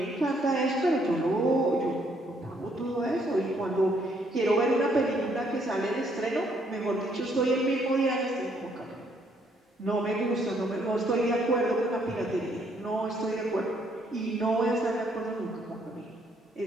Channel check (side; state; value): both; normal; correlation 0.69